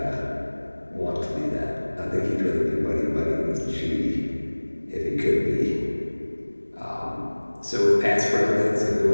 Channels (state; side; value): inverted; both; correlation -1.00